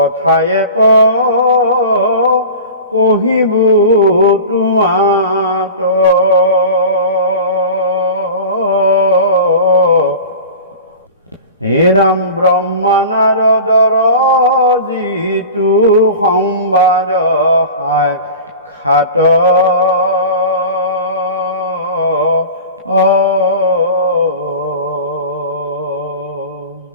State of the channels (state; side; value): inverted; both; correlation -0.35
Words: কহিব তোমাত হে ৰাম ব্ৰহ্মা নাৰদৰ যিটো সংবাদ সাক্ষাৎ